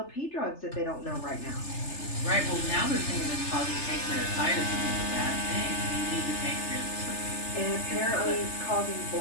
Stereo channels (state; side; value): late; right; 3.3 ms